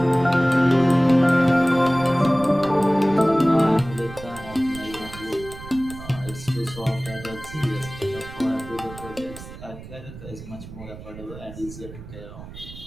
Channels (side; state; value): right; noise; rumble, 15 dB below the sound